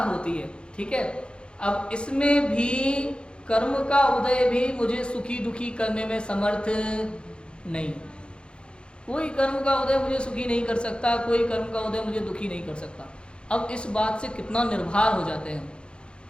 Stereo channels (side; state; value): right; late; 0.054 ms